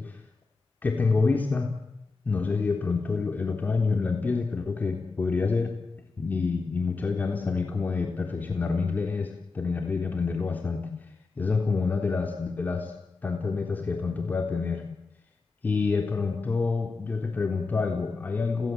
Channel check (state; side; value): quieter; right; 4.1 dB